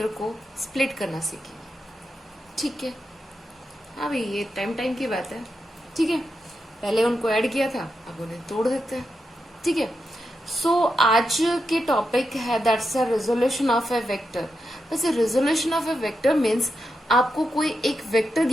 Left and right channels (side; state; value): both; normal; correlation 0.87